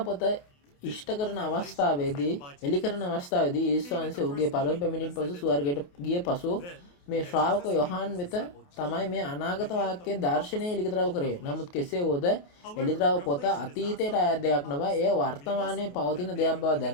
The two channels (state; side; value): late; right; 28 ms